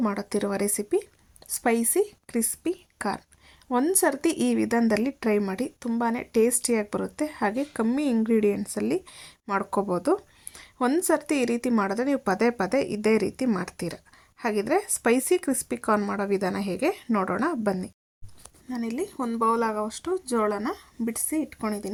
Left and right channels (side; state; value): both; identical; correlation 1.00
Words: ಮಾಡುತ್ತಿರುವ ರೆಸಿಪಿ ಸ್ಪೈಸಿ ಕ್ರಿಸ್ಪಿ ಕಾರ್ನ್. ಒಂದು ಸರ್ತಿ ಈ ವಿಧಾನದಲ್ಲಿ ಟ್ರೈ ಮಾಡಿ, ತುಂಬಾ ಟೇಸ್ಟಿಯಾಗಿ ಬರುತ್ತೆ. ಹಾಗೆ ಕಮ್ಮಿ ಇಂಗ್ರೀಡಿಯೆಂಟ್ಸಲ್ಲಿ ಮಾಡ್ಕೋಬೋದು. ಒಂದು ಸರ್ತಿ ಈ ರೀತಿ ಮಾಡಿದ್ರೆ ನೀವು ಪದೇ ಪದೇ ಇದೇ ರೀತಿ ಮಾಡ್ತೀರ. ಹಾಗಿದ್ರೆ ಸ್ಪೈಸಿ ಕ್ರಿಸ್ಪಿ ಕಾರ್ನ್ ಮಾಡೋ ವಿಧಾನ ಹೇಗೆ ನೋಡೋಣ ಬನ್ನಿ. ನಾನಿಲ್ಲಿ ಒಂದು ಬೌಲ್ ಆಗೋವಷ್ಟು ಜೋಳನ ಬಿಡಿಸಿ